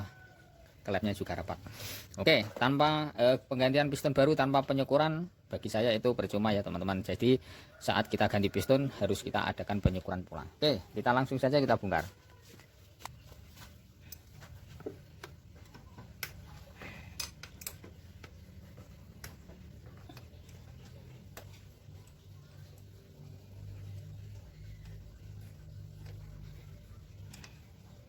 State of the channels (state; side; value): identical; both; correlation 1.00